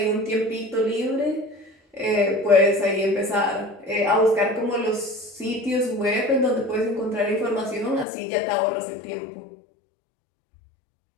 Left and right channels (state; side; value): drops out; right; at 8.1 s